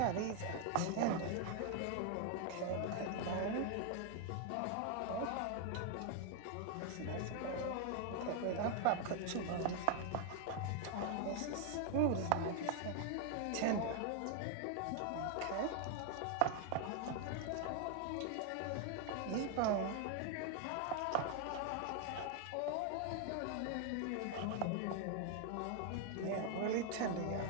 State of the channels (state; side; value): different; both; correlation 0.00